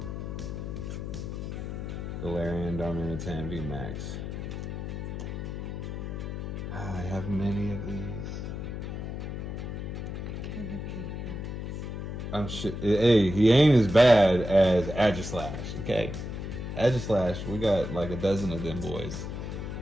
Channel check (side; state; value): left; noise; hum, 6 dB below the sound